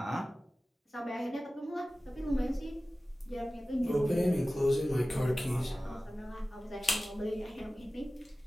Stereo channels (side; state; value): both; normal; correlation 0.96